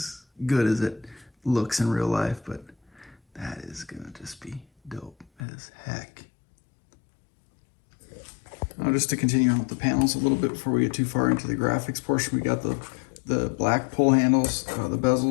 good as it looks in real life, but that is gonna just be dope as heck. Just to continue on with the panels a little bit before we get too far into the graphics portion, we got the black pull handles, the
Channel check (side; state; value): right; drops out; at 5.2 s